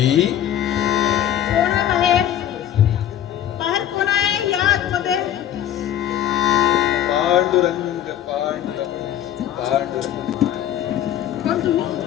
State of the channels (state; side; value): quieter; right; 11.1 dB